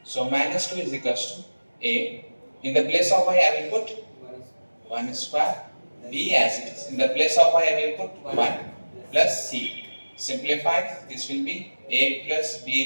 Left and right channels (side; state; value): both; inverted; correlation -1.00